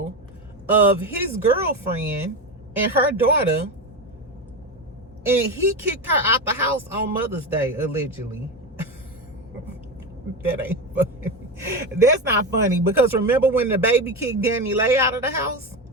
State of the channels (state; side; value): normal; both; correlation 0.18